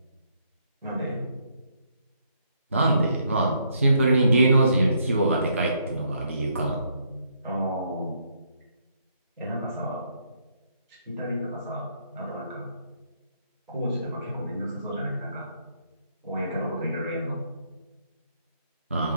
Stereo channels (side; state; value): both; inverted; correlation -0.72